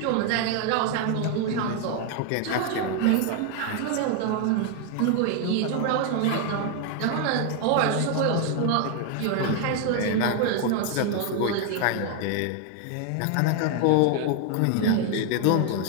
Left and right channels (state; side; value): different; both; correlation 0.00